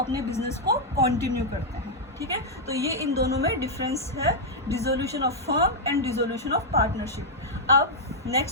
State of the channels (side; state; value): both; normal; correlation -0.05